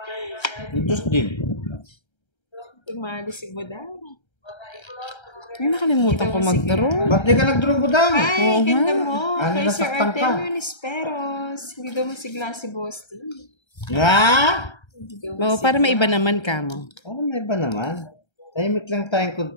Diyos din. Tumali si Budang. Ay, nakalimutan ko mag-draw. Ba't di ka nag-draw budang? Ay, ganda mo. Ano, Kay Sir nasaktan ka? Artemio Nisperos. Hindi daw masigla si Boss T. Nga? Hindi daw Oo, para may iba naman ka mo. Oh, may iba naman. Tahimik lang tayong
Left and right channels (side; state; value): right; late; 1.3 ms